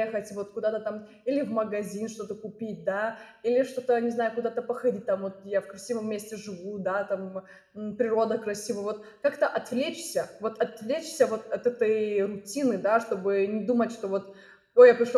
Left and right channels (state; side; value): identical; both; correlation 1.00